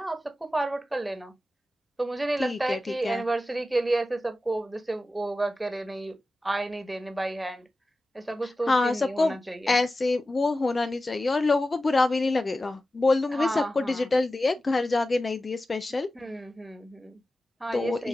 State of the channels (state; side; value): normal; both; correlation 0.94